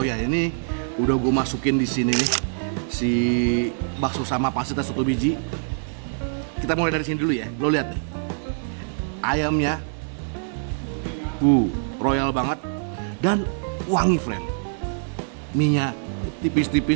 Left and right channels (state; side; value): silent; left; digital silence